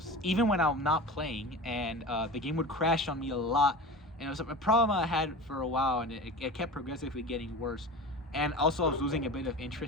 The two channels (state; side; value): normal; both; correlation 0.32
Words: even when I'm not playing, and the game would crash on me a lot. And it was a problem I had for a while, and it kept progressively getting worse. And also I was losing a bit of